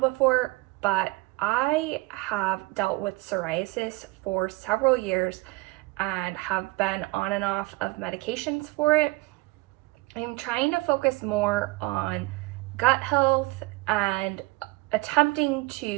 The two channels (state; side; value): quieter; left; 23.0 dB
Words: but I have dealt with psoriasis for several years and have been on and off of medications for it. I'm trying to focus more on gut health and attempting